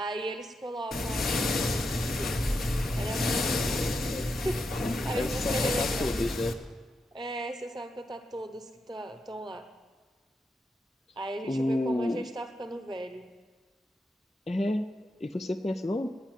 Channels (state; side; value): normal; both; correlation 0.85